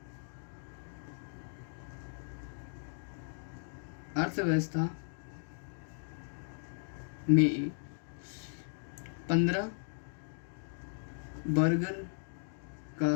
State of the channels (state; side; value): silent; right; digital silence